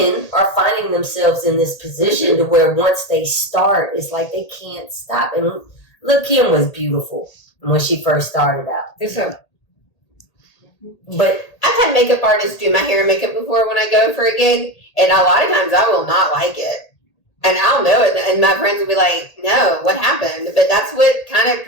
are finding themselves in this position to where once they start, it's like they can't stop. And look, Kim was beautiful when she first started out. But I've had makeup artists do my hair and makeup before when I go for a gig, and a lot of times I will not like it. And I'll know it, and my friends will be like, no, what happened? But that's what kind of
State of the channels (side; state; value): right; late; 1.8 ms